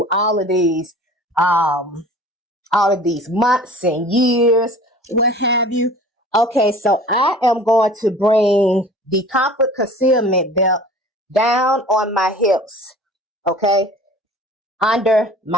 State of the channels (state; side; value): normal; both; correlation 0.44